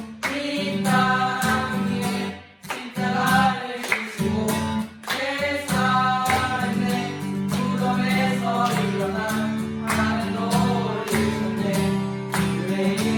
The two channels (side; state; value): both; identical; correlation 1.00